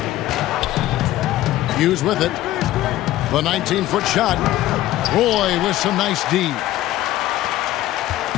Hughes with it. The 19-foot shot. Roy with some nice D.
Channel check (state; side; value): quieter; right; 14.8 dB